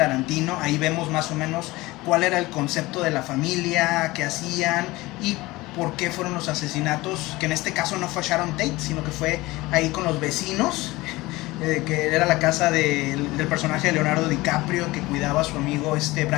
ahí vemos más o menos cuál era el concepto de la familia, qué hacían y por qué fueron los asesinatos, que en este caso no fue Sharon Tate, sino que fue ahí con los vecinos. que era la casa del personaje de Leonardo DiCaprio que cuidaba a su amigo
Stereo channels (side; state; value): right; quieter; 20.2 dB